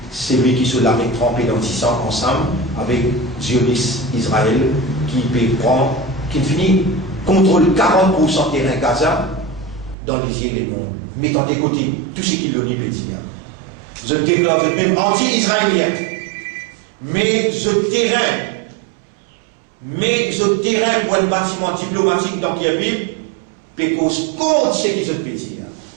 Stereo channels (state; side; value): drops out; left; at 10.0 s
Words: celui qui se l'a trempé dans 10 ans ensemble, avec Zionis Israël, qui finit contrôle 40% terrain Gaza dans les îles et monde, mettant de côté tout ce qu'il l'on y peut dire. Je déclare même anti-israélien, mais je terrain pour un bâtiment diplomatique dans Kiev, pécose contre ce qu'ils ont pu dire.